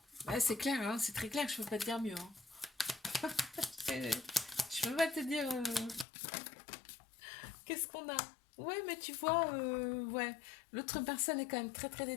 Ouais, c'est clair, hein, c'est très clair, je peux pas te dire mieux, hein. Je peux pas te dire qu'est-ce qu'on a. Ouais, mais tu vois, ouais, l'autre personne est quand même très très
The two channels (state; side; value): drops out; right; at 6.1 s